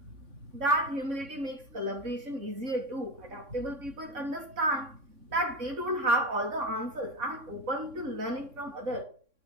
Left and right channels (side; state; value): left; late; 3.6 ms